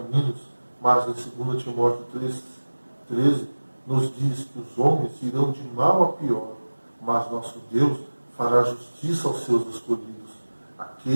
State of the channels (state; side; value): inverted; both; correlation -1.00